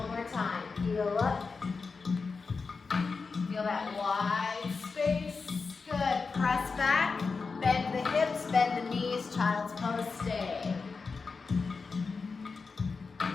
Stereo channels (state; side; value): quieter; right; 4.6 dB